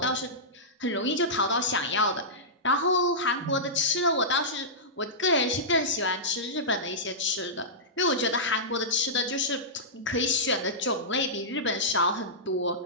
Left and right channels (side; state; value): both; normal; correlation -0.15